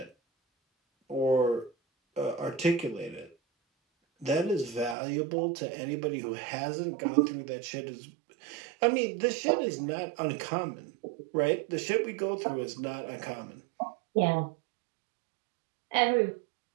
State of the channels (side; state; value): left; drops out; at 5.0 s